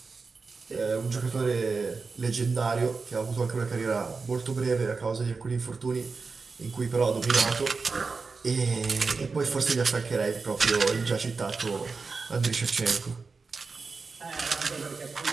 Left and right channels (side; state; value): left; quieter; 4.5 dB